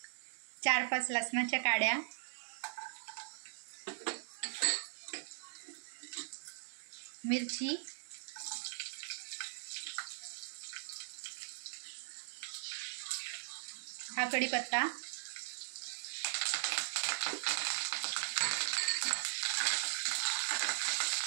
4-5 लसणाच्या काड्या. मिरची. हा कढीपत्ता.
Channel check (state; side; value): silent; left; digital silence